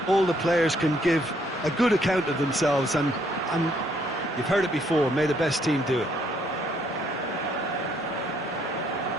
all the players can give a good account of themselves. And you've heard it before, may the best team do it.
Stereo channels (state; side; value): normal; both; correlation 0.69